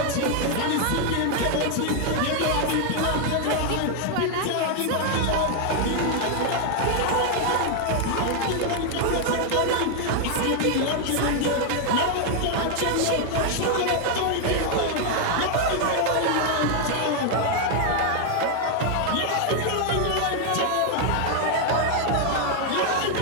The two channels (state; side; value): different; both; correlation 0.00